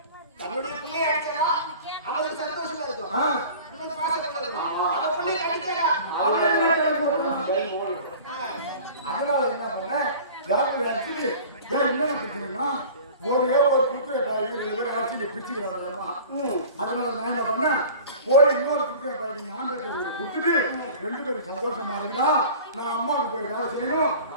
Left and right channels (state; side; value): inverted; both; correlation -0.42